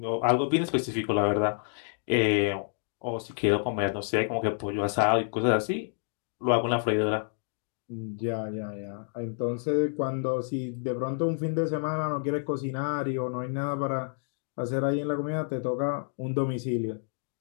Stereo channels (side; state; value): right; silent; 59 dB below the other